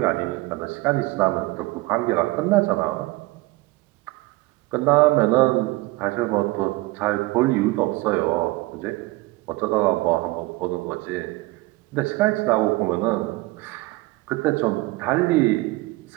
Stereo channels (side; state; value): left; quieter; 20.9 dB